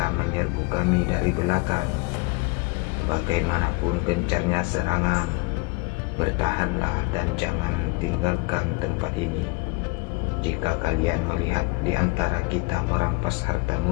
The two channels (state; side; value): quieter; right; 25.0 dB